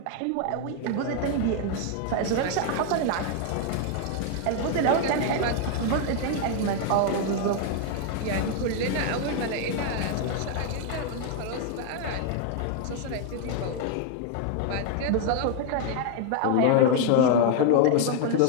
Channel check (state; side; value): different; both; correlation 0.00